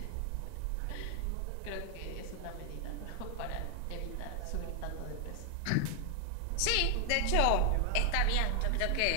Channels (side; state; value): both; different; correlation 0.00